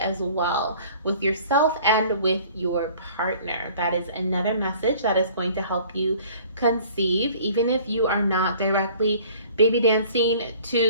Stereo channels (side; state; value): both; inverted; correlation -0.51